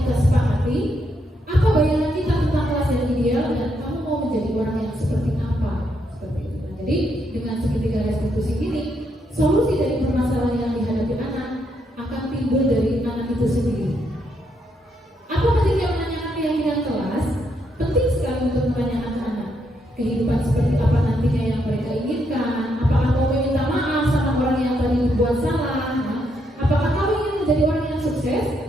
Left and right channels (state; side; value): normal; both; correlation 0.77